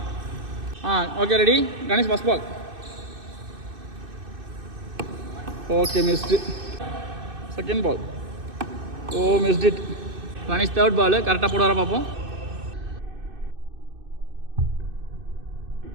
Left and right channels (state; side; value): late; left; 2.6 ms